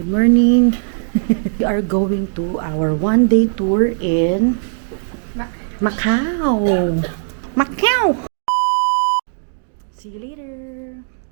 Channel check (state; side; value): silent; left; digital silence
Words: morning. We are going to our one-day tour in Macau. Macau! See you later.